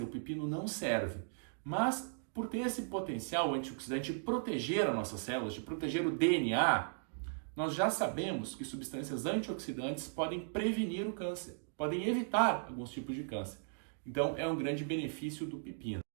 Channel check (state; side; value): silent; left; digital silence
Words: o pepino não serve, mas por ter esse potencial antioxidante de proteger as nossas células, de proteger o DNA, nós já sabemos que substâncias antioxidantes podem prevenir o câncer, podem evitar alguns tipos de câncer. Então, é um grande benefício do pepino.